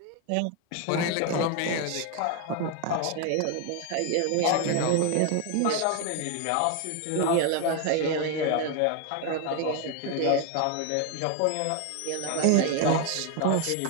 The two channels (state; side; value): different; both; correlation 0.01